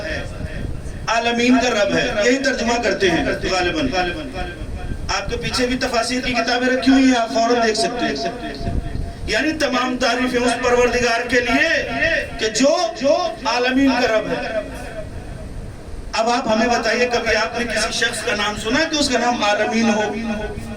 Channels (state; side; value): identical; both; correlation 1.00